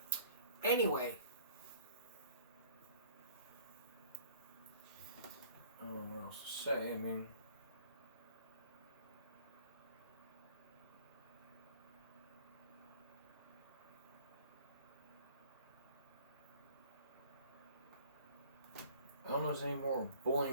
Anyway. I don't know what else to say. I mean... I don't know if there's any more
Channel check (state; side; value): inverted; both; correlation -0.52